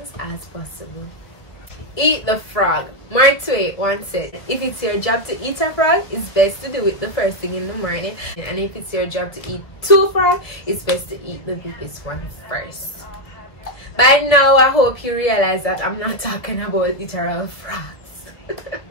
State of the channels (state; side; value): late; right; 1.2 ms